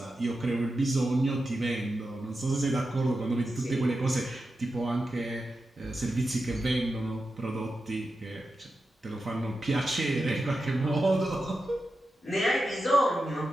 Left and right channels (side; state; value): both; normal; correlation 0.90